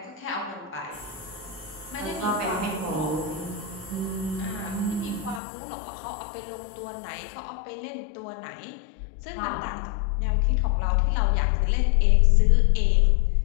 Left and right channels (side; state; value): right; drops out; at 5.4 s